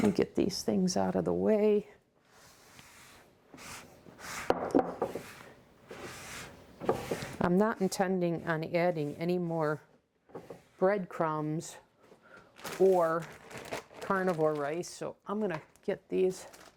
me get these things out of the way. I'm not intending on adding any more breadcrumbs or carnivore rice, so I'm going to get these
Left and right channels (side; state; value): both; identical; correlation 1.00